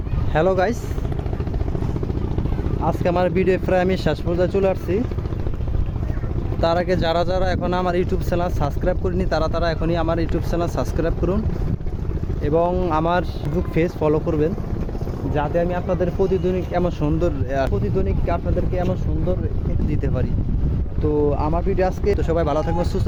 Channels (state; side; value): identical; both; correlation 1.00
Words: হ্যালো গাইস, আজকে আমার ভিডিও প্রায় আমি শেষ পর্যায়ে চলে আসছি। তার আগে যারা যারা এখন আমার ইউটিউব চ্যানেল সাবস্ক্রাইব করিনি তারা এখনই আমার ইউটিউব চ্যানেল সাবস্ক্রাইব করুন এবং আমার ফেসবুক পেজ ফলো করবেন, যাতে আমি আপনাদের প্রতিদিনিক আপনাদেরকে এমন সুন্দর দিতে পারি। তো আমার ভিডিও আজকে, তো সবাই ভালো থাকবেন, সুস্থ